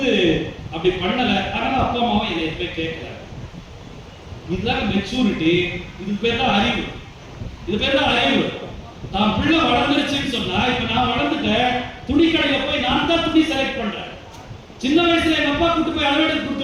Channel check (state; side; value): identical; both; correlation 1.00